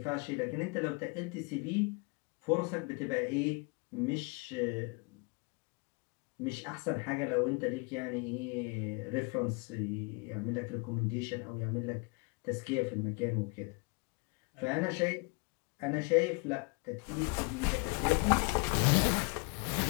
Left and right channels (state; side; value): quieter; right; 31.0 dB